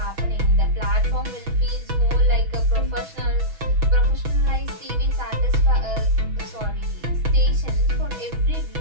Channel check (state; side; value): late; left; 6.1 ms